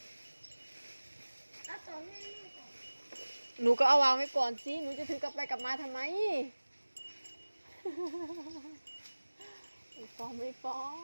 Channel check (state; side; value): inverted; both; correlation -1.00